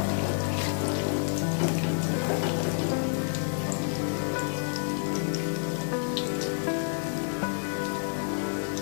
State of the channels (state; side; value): silent; right; digital silence